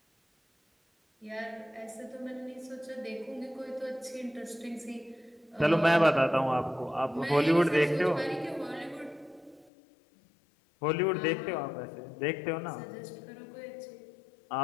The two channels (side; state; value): right; drops out; at 9.7 s